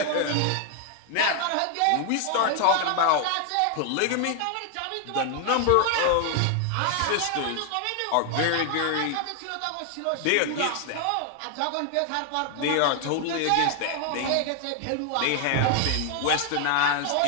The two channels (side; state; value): both; different; correlation 0.00